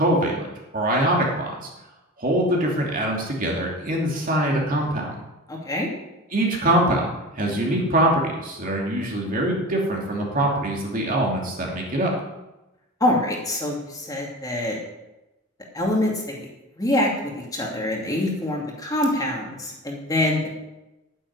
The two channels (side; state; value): both; normal; correlation 0.32